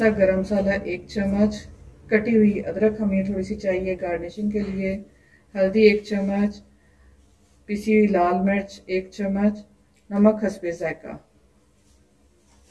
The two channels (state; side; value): identical; both; correlation 1.00